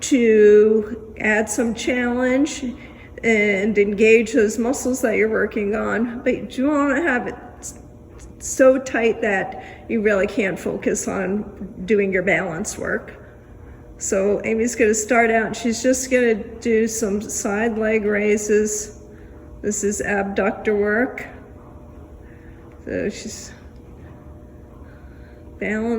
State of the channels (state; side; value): identical; both; correlation 1.00